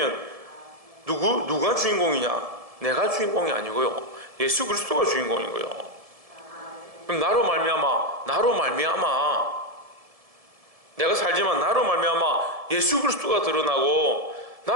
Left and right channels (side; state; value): left; late; 1.7 ms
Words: 누가 주인공이냐? 내가 주인공이 아니고요. 예수 그리스도가 주인공인 거예요. 그럼 나로 말미암아 내가 살지만 나로 말미암아 예수 그리스도가 드러나고